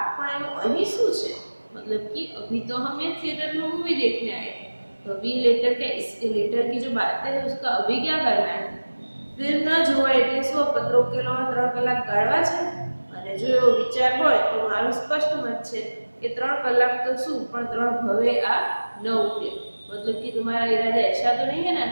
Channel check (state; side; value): inverted; both; correlation -1.00